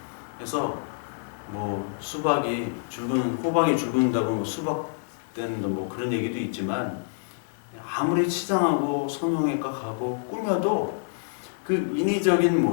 그래서 뭐 수박이 호박이 죽는다고 뭐 수박 때는 뭐 그런 얘기도 있지만, 아무리 치장하고 성형외과 가고 꾸며도 그 인위적인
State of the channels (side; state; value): right; silent; 60 dB below the other